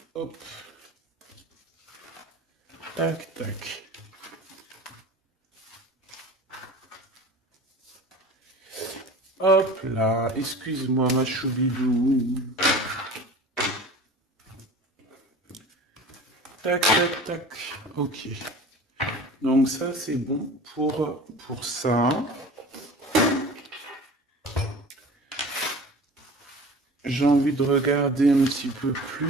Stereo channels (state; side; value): normal; both; correlation 0.39